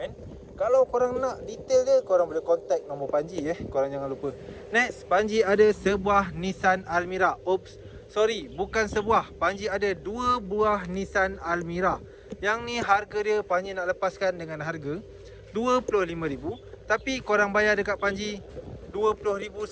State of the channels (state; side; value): identical; both; correlation 1.00